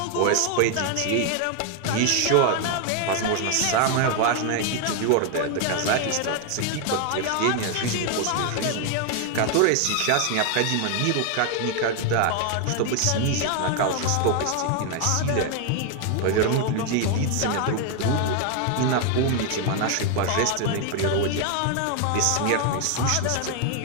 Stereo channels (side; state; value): both; different; correlation 0.01